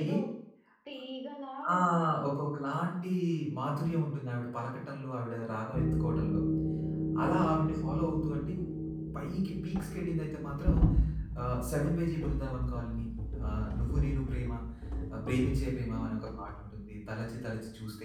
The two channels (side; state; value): both; identical; correlation 1.00